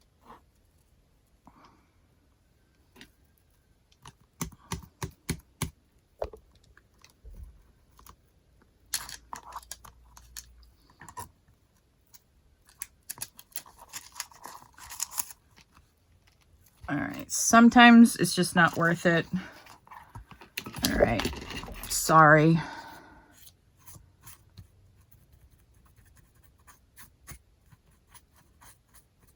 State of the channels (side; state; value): both; identical; correlation 1.00